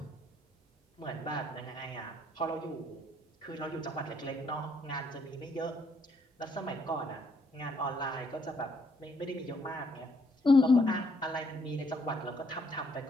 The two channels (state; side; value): normal; both; correlation 0.70